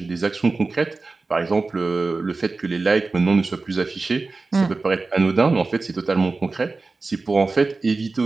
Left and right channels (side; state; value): left; quieter; 3.7 dB